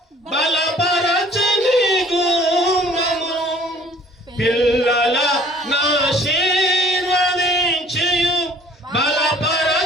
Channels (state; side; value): normal; both; correlation 0.55